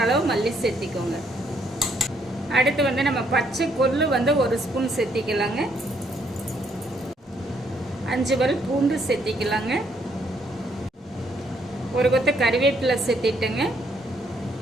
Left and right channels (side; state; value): both; normal; correlation 0.70